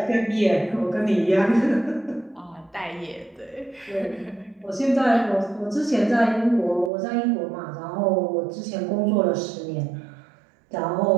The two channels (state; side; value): drops out; left; at 6.9 s